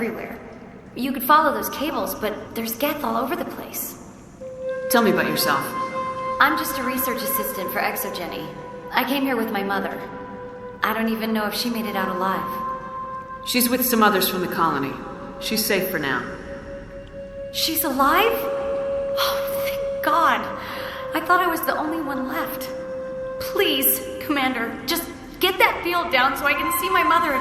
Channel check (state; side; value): identical; both; correlation 1.00